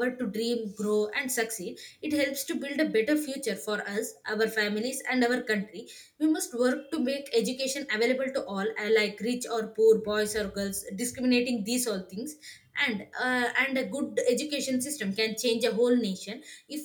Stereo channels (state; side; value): identical; both; correlation 1.00